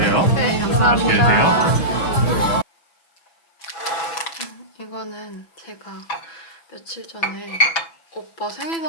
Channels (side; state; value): right; late; 6.0 ms